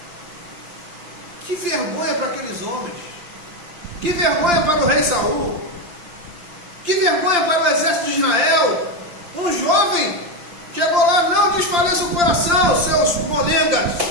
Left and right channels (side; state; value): left; late; 5.8 ms